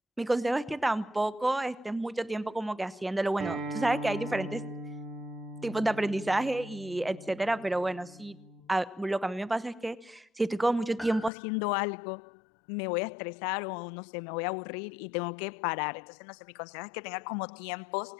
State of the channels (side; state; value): right; drops out; at 11.3 s